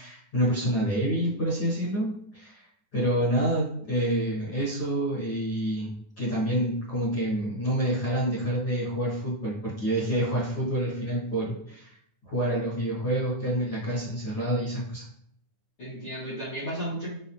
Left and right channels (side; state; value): right; late; 9.8 ms